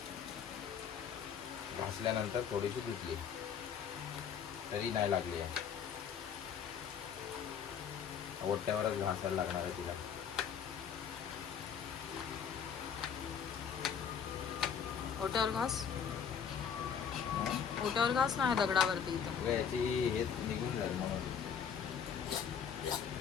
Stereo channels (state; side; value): quieter; right; 7.5 dB